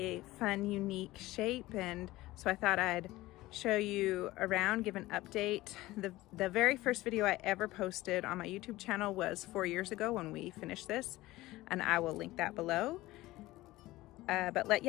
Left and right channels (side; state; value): right; quieter; 18.0 dB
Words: fun, unique shape. And so I thought I'd show you around, give an update. The very first video I ever posted on my YouTube channel was 4 years ago when we finished this, and I will link that below.